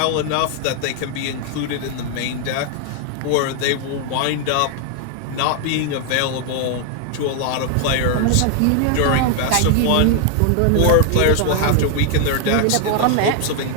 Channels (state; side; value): different; both; correlation 0.00